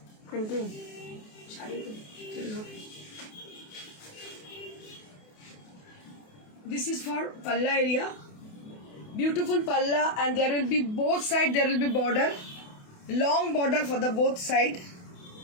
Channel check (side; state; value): right; late; 28 ms